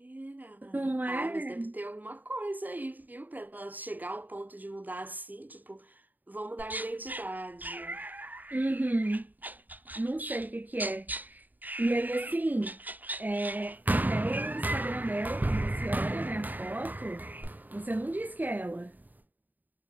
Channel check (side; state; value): left; late; 0.086 ms